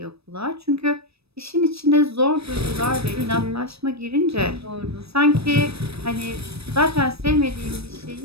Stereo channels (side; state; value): left; late; 0.78 ms